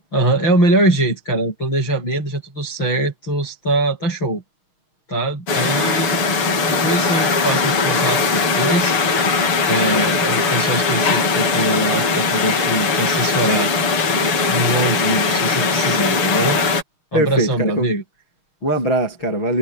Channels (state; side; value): late; right; 6.4 ms